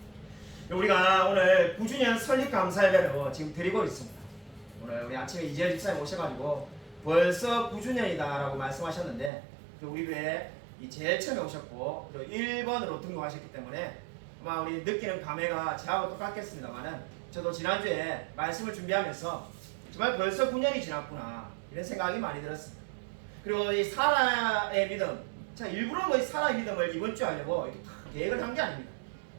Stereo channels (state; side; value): drops out; left; at 9.3 s